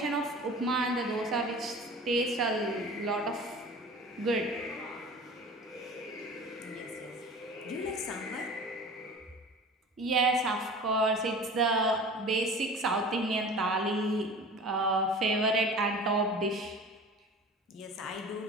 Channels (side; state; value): both; normal; correlation 0.39